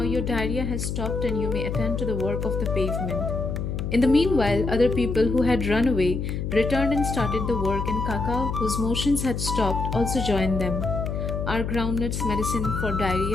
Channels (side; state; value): left; noise; hum, 3 dB below the sound